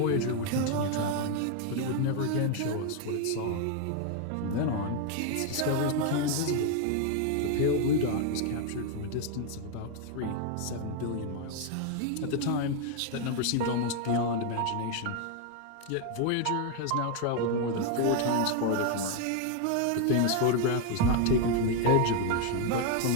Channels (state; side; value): different; both; correlation 0.01